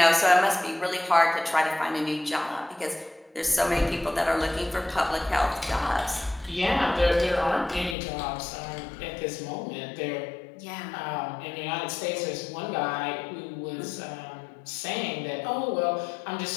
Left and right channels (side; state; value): right; drops out; at 8.0 s